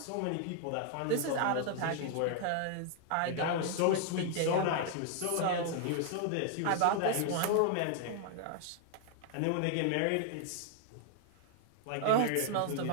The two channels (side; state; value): both; different; correlation 0.00